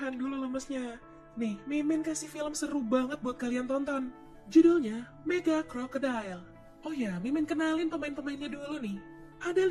dulu lemesnya. Nih, Mimin kasih film seru banget buat kalian tonton. Judulnya Mega Crocodile. Oh ya, Mimin kenalin pemain-pemainnya dulu nih. Ada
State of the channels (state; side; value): identical; both; correlation 1.00